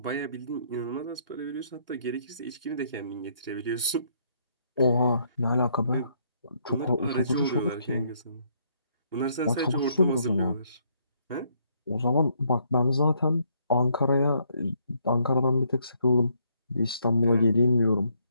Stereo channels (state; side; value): inverted; both; correlation -0.70